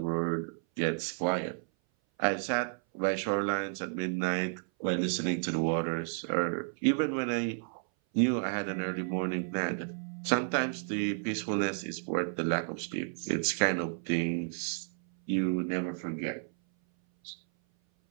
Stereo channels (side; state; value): left; silent; 57 dB below the other